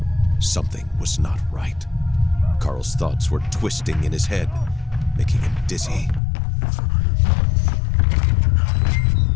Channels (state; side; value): drops out; right; at 6.2 s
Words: Something was not right. Carl's thoughts were twisting in his head, making him dizzy.